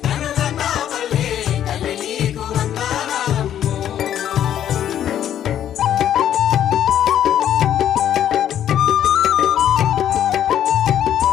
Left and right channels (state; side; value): quieter; right; 10.5 dB